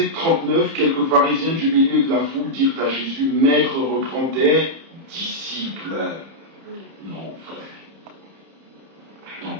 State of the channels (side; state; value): left; late; 31 ms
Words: 39, quelques pharisiens du milieu de la foule dirent à Jésus, « Maître, reprends tes disciples. » Non, frère. Non,